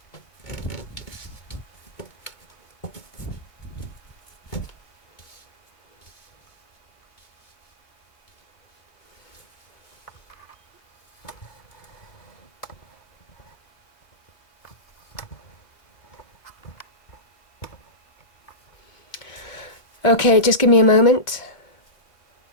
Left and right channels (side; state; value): right; late; 2.3 ms